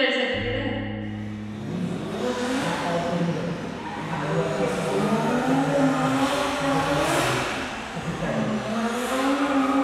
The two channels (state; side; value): identical; both; correlation 1.00